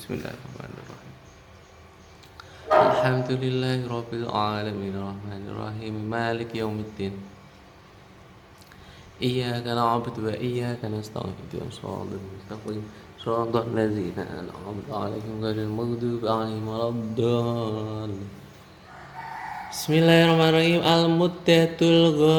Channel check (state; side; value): identical; both; correlation 1.00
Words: Alhamdulillahi rabbil alamin arrahmanir rahim maliki yaumiddin. إياك نعبد وإياك نستعين اهدنا الصراط المستقيم صراط الذين أنعمت عليهم غير المغضوب عليهم ولا الضالين Bismillahirrahmanirrahim. Al-muddatul